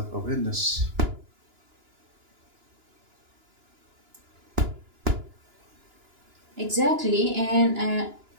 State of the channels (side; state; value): left; late; 2.9 ms